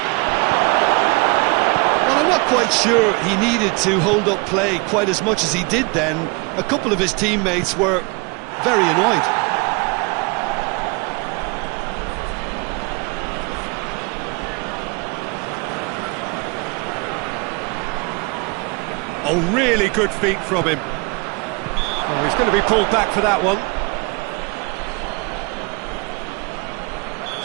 Well, I'm not quite sure he needed to hold up play quite as much as he did then. A couple of his teammates were very annoyed. Oh, really good feet from him. Oh, he's going to be pulled back for that one.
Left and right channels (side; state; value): left; quieter; 28.9 dB